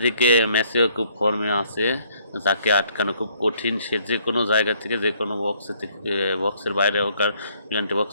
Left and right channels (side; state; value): both; inverted; correlation -0.65